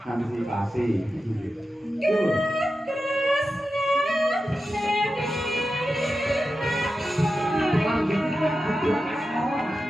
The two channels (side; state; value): both; normal; correlation 0.91